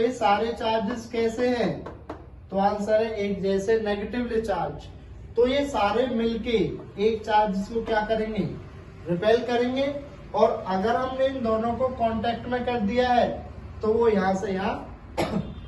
सारे चार्जेस कैसे हैं, तो आंसर है एक जैसे, नेगेटिवली चार्ज। तो ये सारे मिलके एक चार्ज को क्या करेंगे, रिपेल करेंगे। और अगर हमने इन दोनों को कांटेक्ट में कर दिया है तो वो यहां से यहां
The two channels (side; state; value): both; identical; correlation 1.00